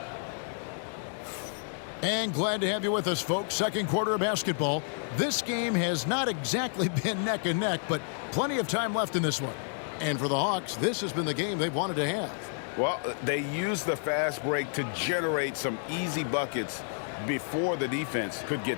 And glad to have you with us, folks. Second quarter of basketball. This game has not exactly been neck and neck, but plenty of time left in this one. And for the Hawks, this has been the game they've wanted to have. Well, they used the fast break to generate some easy buckets before the defense could get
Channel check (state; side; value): silent; right; 58 dB below the other